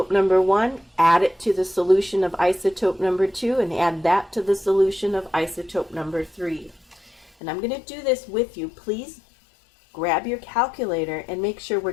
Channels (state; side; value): drops out; right; at 7.3 s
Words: number 1, add it to the solution of isotope number 2, and add that to the solution of isotope number 3. And I'm going to do this with you. Please grab your calculator and make sure we're